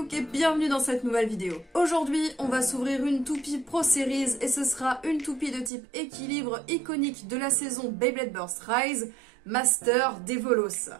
et bienvenue dans cette nouvelle vidéo. Aujourd'hui, on va s'ouvrir une toupie Pro Series et ce sera une toupie de type équilibre iconique de la saison Beyblade Burst Rise, Master Dévolos.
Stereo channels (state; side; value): drops out; left; at 5.7 s